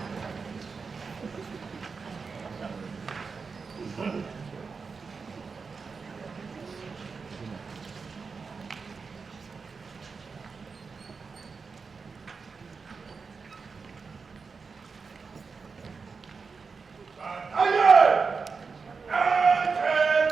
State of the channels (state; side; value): quieter; left; 5.0 dB